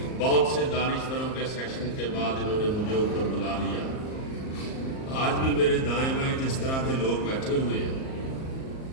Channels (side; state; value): right; late; 38 ms